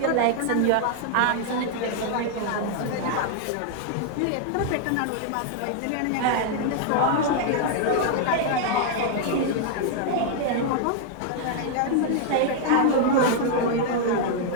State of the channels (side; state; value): both; different; correlation 0.00